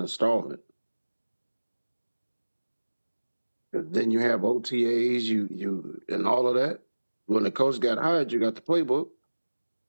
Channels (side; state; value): both; inverted; correlation -1.00